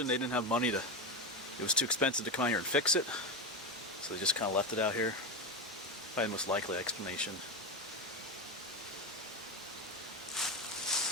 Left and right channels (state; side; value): normal; both; correlation 0.16